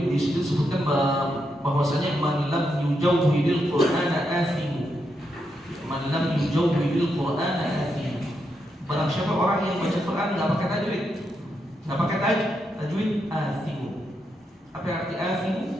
di situ disebutkan bahwasanya man lam yujawwidil Qur'ana athimu, man lam yujawwidil Qur'ana athimu, barang siapa orang yang baca Quran nggak pakai tajwid, nggak pakai tajwid, athimu. Apa yang arti athimu?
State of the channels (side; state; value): both; normal; correlation 0.82